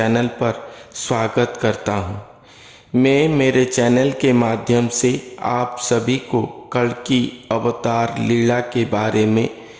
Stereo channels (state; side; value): identical; both; correlation 1.00